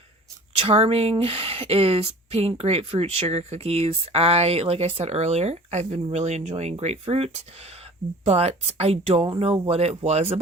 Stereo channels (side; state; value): both; normal; correlation 0.44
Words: Charming is pink grapefruit sugar cookies. Like I said earlier, I've been really enjoying grapefruit, but I don't know what it was